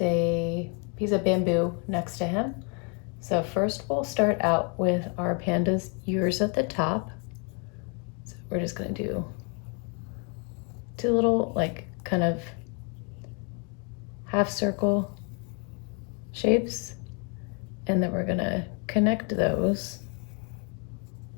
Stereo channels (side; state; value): right; quieter; 37.6 dB